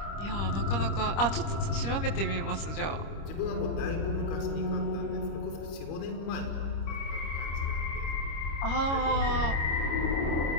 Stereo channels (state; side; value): late; right; 25 ms